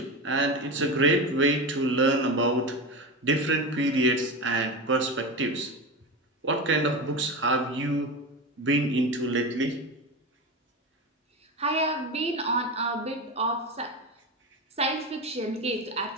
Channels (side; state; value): both; normal; correlation 0.22